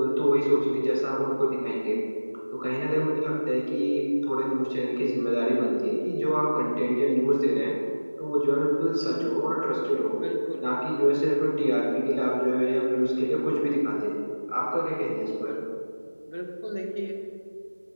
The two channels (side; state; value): both; inverted; correlation -1.00